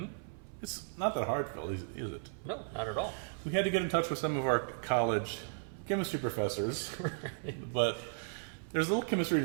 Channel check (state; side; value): silent; left; 54 dB below the other